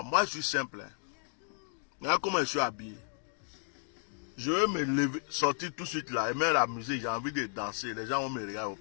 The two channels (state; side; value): silent; right; 56 dB below the other